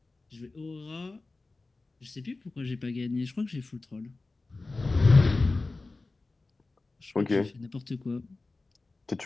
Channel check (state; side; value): quieter; right; 3.4 dB